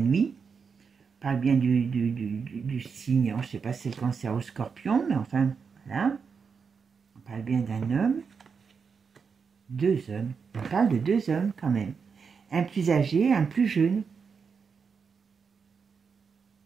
on parle bien du signe, je ne sais pas si c'est le Cancer ou Scorpion, mais enfin, voilà. On parle bien d'un homme, 2 hommes, on parle de 2 hommes quand même, un plus âgé, un plus jeune.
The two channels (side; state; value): left; quieter; 5.7 dB